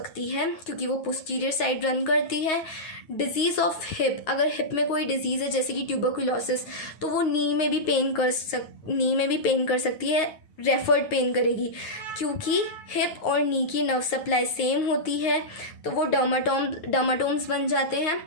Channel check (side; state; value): right; late; 9.1 ms